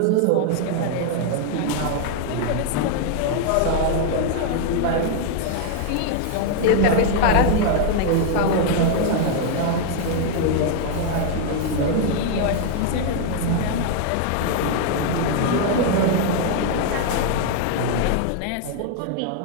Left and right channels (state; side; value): different; both; correlation 0.00